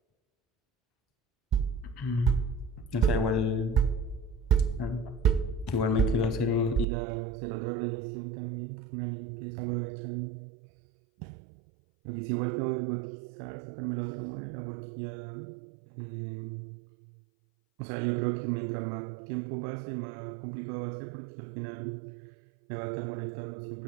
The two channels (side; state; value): left; drops out; at 6.9 s